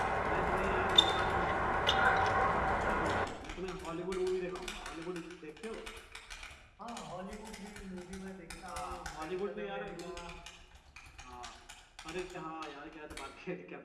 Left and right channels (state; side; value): identical; both; correlation 1.00